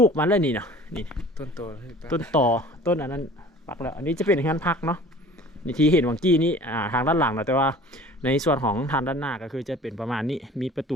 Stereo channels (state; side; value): normal; both; correlation 0.46